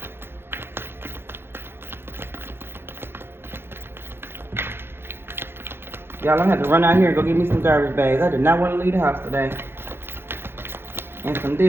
Y'all, I'm gonna have to run out here and go get me some garbage bags. I did not want to leave the house today. And some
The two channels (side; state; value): left; late; 0.11 ms